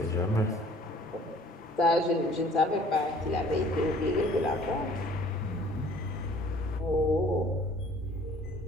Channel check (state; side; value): normal; both; correlation 0.53